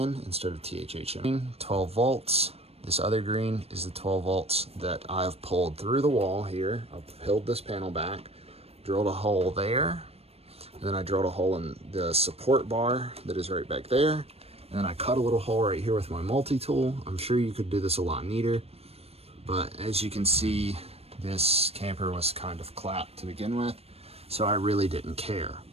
instead of THHN. 12 volts. This other green is the 12 volts that I've pulled through the wall here. I've peeled this panel back, drilled a hole there, and then I drilled a hole in the support bar that is right back there. And then I cut a little hole right here with my multi-tool. I'm sure you could do this a lot neater, but as you can see, this camper was kind of clapped to begin with, so I really didn't care.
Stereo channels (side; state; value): left; late; 0.29 ms